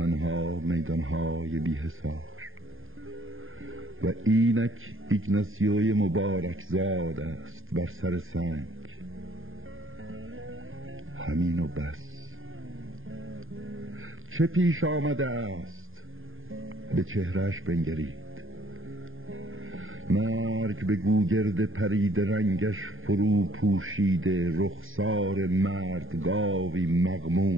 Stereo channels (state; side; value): late; left; 0.59 ms